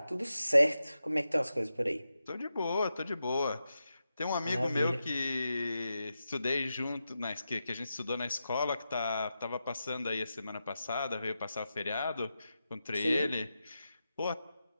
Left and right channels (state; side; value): inverted; both; correlation -0.89